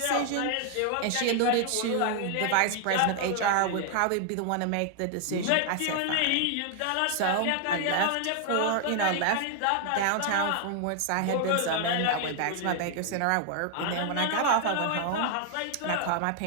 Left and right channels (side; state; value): both; different; correlation 0.00